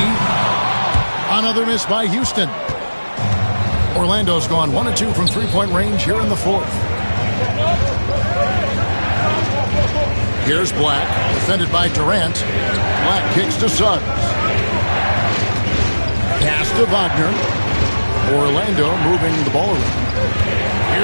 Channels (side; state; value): both; inverted; correlation -1.00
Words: Another miss by Houston. Orlando's gone 1 of 2 from three-point range here in the 4th. Here's Black, defended by Durant. Black kicks to Suggs. Pass to Wagner. Orlando moving the ball around.